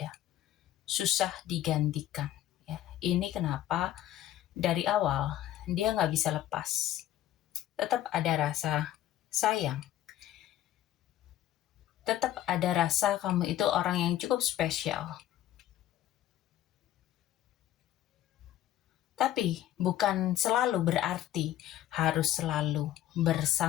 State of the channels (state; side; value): quieter; right; 12.8 dB